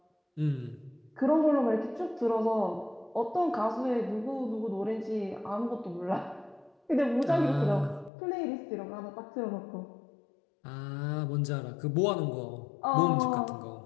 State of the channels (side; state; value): right; drops out; at 8.1 s